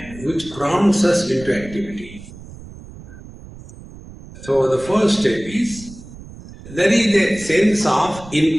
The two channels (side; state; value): right; noise; rumble, 17 dB below the sound